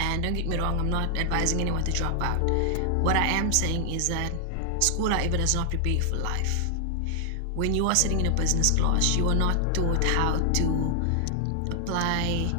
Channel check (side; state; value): both; different; correlation 0.00